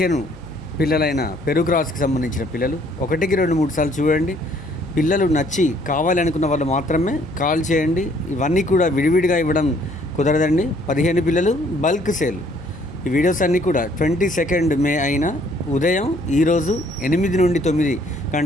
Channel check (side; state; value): right; noise; hum, 19 dB below the sound